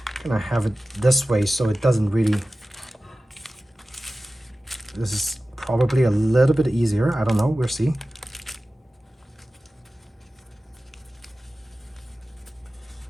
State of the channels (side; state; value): both; normal; correlation 0.95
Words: I'm gonna have it this way so it doesn't really, this is probably a little bit easier. I don't know, we'll see.